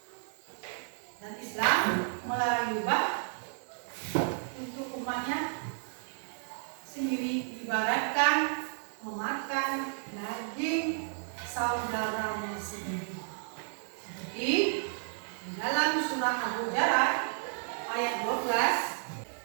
Dan Islam melarang ghibah untuk umatnya sendiri, ibaratkan memakan daging saudaranya sendiri. Seperti di dalam surah Al-Hujurat ayat 12.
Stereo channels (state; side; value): silent; left; digital silence